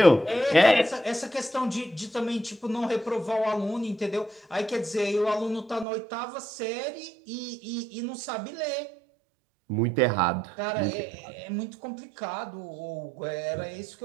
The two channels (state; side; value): drops out; left; at 5.9 s